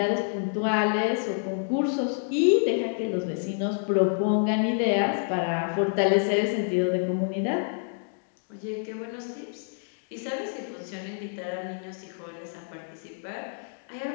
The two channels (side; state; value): right; silent; digital silence